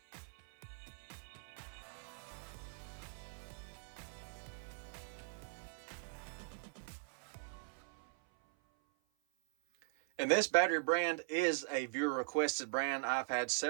And this battery brand is a viewer requested brand. I've had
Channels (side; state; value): left; silent; 50 dB below the other